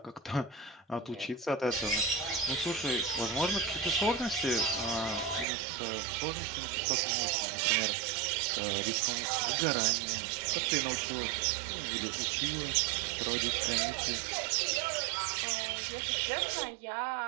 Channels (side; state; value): left; drops out; at 5.5 s